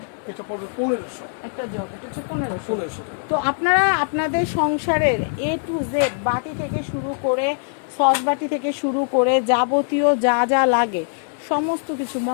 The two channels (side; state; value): right; silent; digital silence